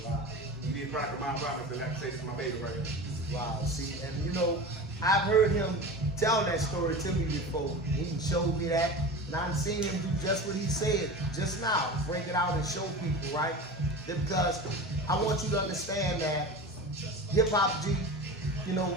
did Product of My Environment, and like I say, this is my baby right here. Wow, see, and you know, I've heard him tell that story to me before. He showed me that, and I've seen him do just what he said just now, break it out and show people, right? Because I want you to understand that Hip Hop G, you know,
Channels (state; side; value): normal; both; correlation 0.31